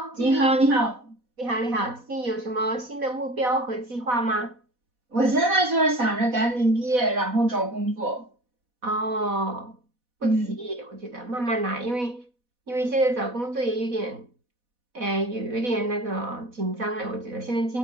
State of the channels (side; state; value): left; late; 4.1 ms